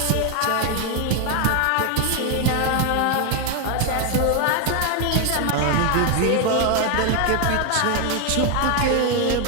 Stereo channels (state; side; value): different; both; correlation 0.01